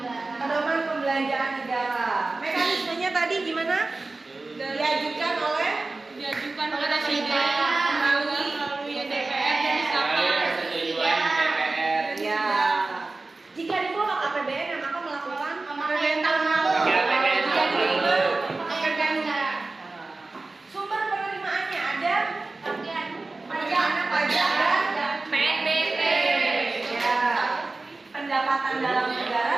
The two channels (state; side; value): quieter; left; 3.4 dB